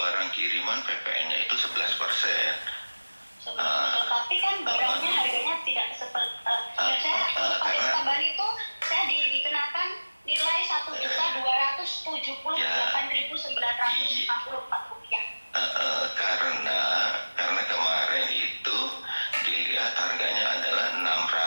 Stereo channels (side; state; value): both; inverted; correlation -1.00